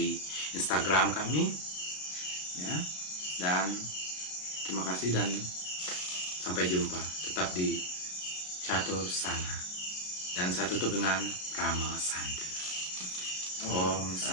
Instagram kami. Ya. Dan terima kasih dan sampai jumpa. Tetap di Catur Sana. Dan saya tutup dengan Rama Santi. Om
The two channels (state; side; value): late; right; 33 ms